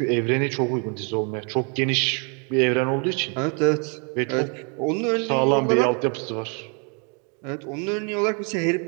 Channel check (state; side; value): quieter; left; 36.3 dB